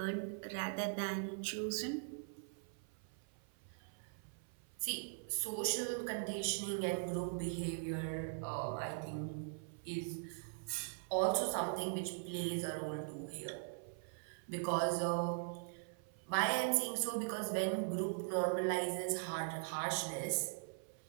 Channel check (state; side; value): silent; left; 50 dB below the other